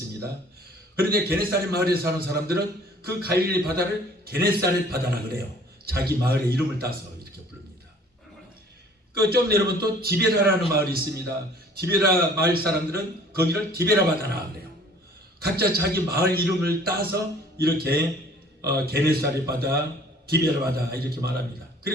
그런데 게네사렛 마을에 사는 사람들은 그 갈릴리 바다를 게네사렛 바다라 그래요. 자기 마을의 이름을 따서 이렇게 부릅니다. 그 좀 내려오면 또 디베라라는 마을이 있습니다. 디베라 마을 사람들은 거기를 디베라 바다라 그래요. 각자 자기 마을 이름을 따서 이렇게 게네사렛 바다, 디베라 바다 이렇게 말합니다.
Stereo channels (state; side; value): normal; both; correlation 0.52